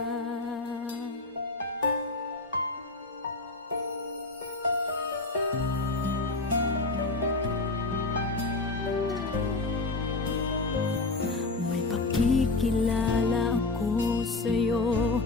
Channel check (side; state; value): right; quieter; 3.4 dB